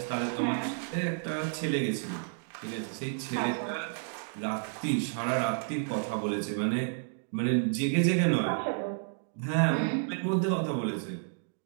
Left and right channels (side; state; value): left; silent; digital silence